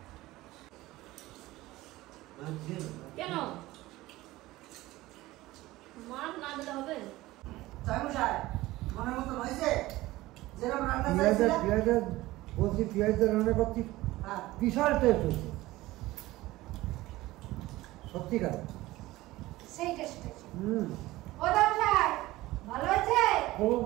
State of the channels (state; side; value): quieter; left; 18.0 dB